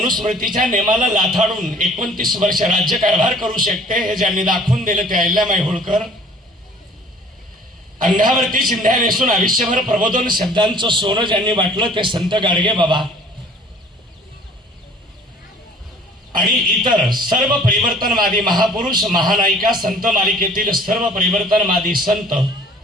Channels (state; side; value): normal; both; correlation 0.52